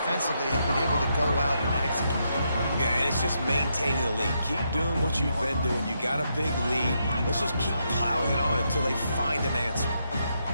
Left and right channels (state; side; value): inverted; both; correlation -0.80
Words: have been able to go out and execute. Yeah, and it's just maintaining the lead. Keep doing what you've been doing. You got a big lead. Let's just keep piling it on until they find an answer.